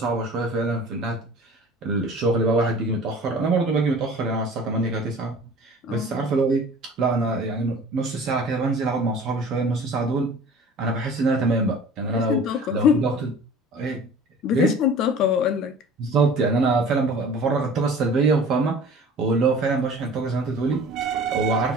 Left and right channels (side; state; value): both; normal; correlation 0.44